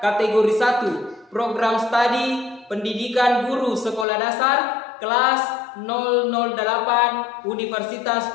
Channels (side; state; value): right; drops out; at 4.0 s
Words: 1, program studi pendidikan guru sekolah dasar kelas 008 Universitas